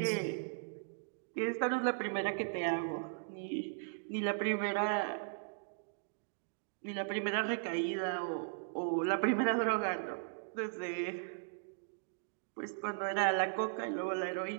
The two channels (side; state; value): left; silent; digital silence